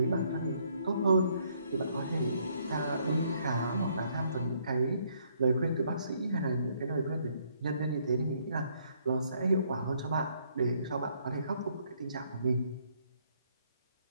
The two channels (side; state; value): both; inverted; correlation -0.68